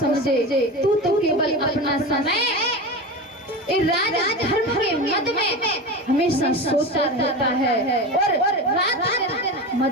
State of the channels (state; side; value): normal; both; correlation 0.26